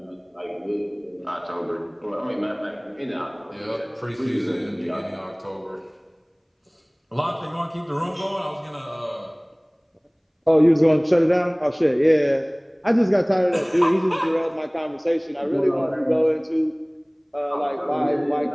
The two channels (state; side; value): identical; both; correlation 1.00